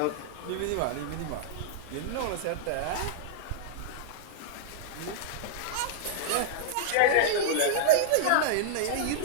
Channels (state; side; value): different; both; correlation -0.01